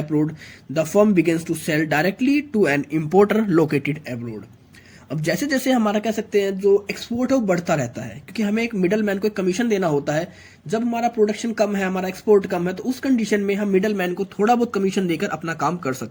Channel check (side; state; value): both; identical; correlation 1.00